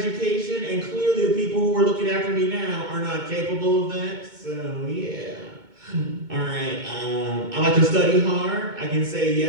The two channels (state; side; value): late; left; 2.2 ms